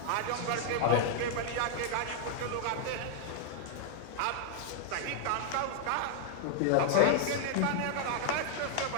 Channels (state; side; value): different; both; correlation 0.00